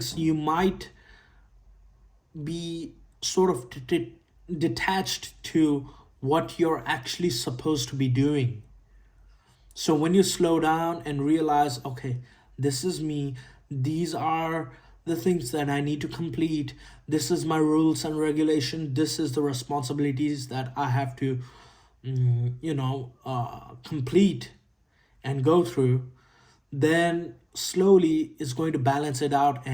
you might be sort of detached to what you're actually supposed to be doing. So when you slow down and realize, okay, this is me, these are the things that I need to complete, this is my rules and regulation, this is the responsibilities that I have to, complete and go through, then slowly it's going to balance it out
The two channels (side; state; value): both; identical; correlation 1.00